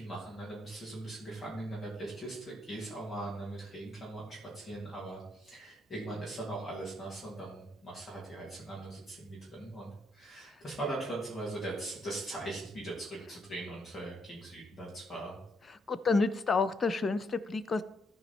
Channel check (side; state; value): both; normal; correlation 0.75